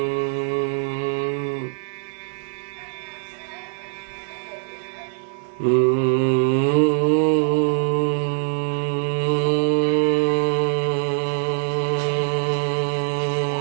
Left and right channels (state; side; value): silent; left; digital silence